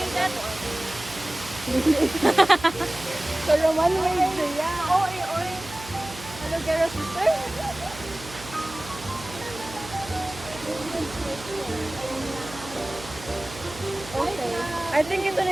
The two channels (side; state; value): right; noise; hum, 15 dB below the sound